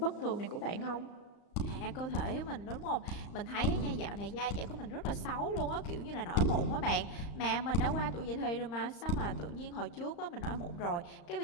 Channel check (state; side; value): late; right; 35 ms